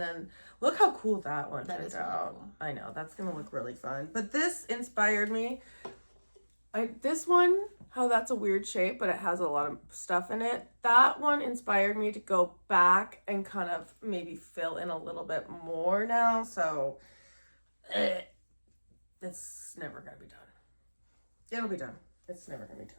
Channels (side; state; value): both; inverted; correlation -1.00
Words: look how cool that one That turned is really out. cool. I know, that's gonna look really fun. But this inspired me. This one, how that's a weird shape, but it has a lot of stuff in it. That one inspired me to go back and kind of maybe fill in a little bit more now. So it's never gonna be done. It'll be done. It's never gonna be